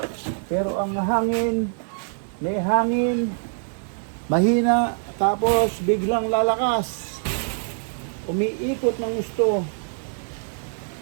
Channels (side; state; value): left; silent; 62 dB below the other